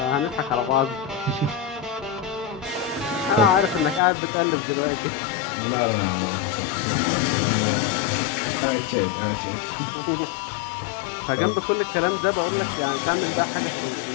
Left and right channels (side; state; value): right; drops out; at 4.0 s